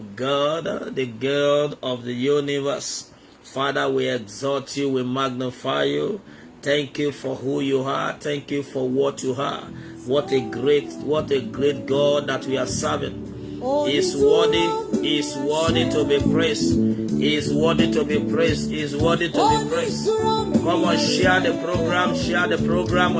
God, the God of the universe. Father, we exalt you. We magnify you. Thank you for who you are. Thank you for what you are. What a great God that we are serving. He is worthy. He is worthy to be praised. He is worthy to be praised. He is worthy to be praised. Come on, share the program. Share the program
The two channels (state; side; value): identical; both; correlation 1.00